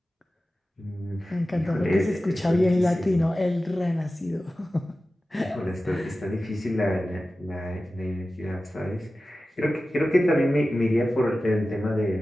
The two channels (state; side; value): normal; both; correlation 0.95